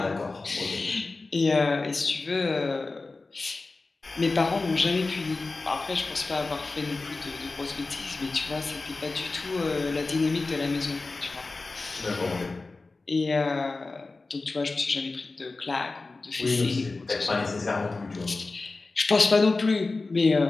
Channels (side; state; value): right; quieter; 3.6 dB